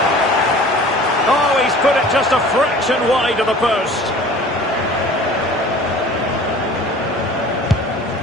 Oh, he's put it just a fraction wide of the post.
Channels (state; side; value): normal; both; correlation 0.45